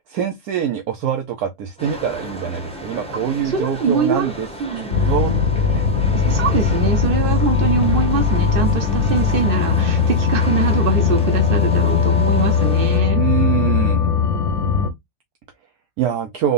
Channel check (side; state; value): both; normal; correlation -0.04